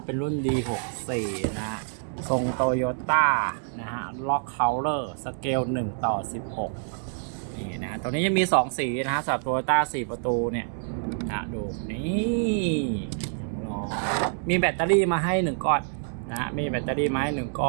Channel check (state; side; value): silent; left; digital silence